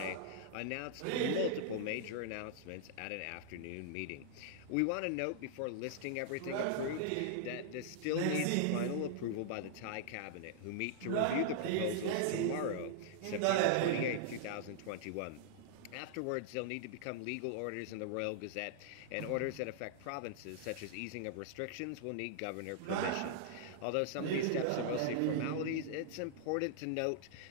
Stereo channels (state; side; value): different; both; correlation -0.01